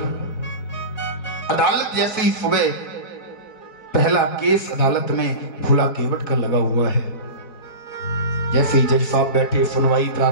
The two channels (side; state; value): right; late; 4.5 ms